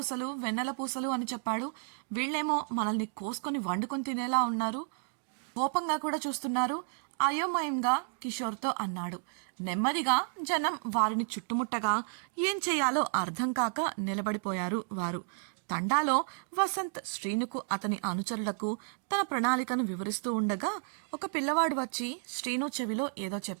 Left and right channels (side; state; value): left; silent; 56 dB below the other